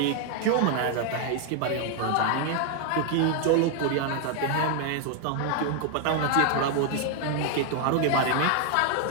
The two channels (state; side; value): different; both; correlation 0.00